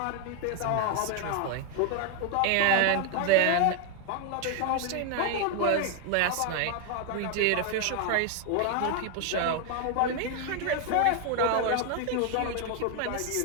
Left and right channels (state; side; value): different; both; correlation 0.01